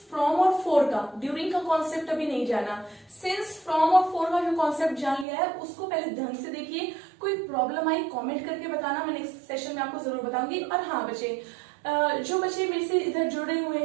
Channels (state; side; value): drops out; left; at 5.2 s